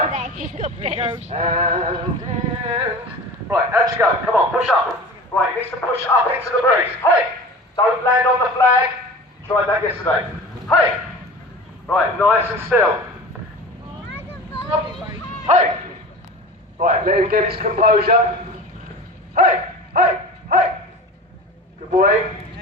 And right, out you go. Come on, push up. Right, he needs to push up into the breeze. Hey! Don't land on the flag. Tried that yesterday. Hey! Right, nice and still. Hey! Right, let him get his composure. Hey! Good boy.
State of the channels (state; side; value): normal; both; correlation 0.36